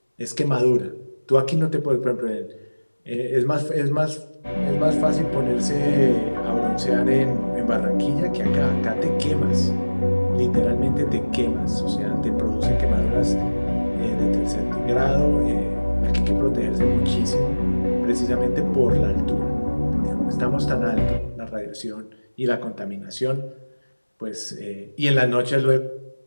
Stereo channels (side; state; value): both; inverted; correlation -1.00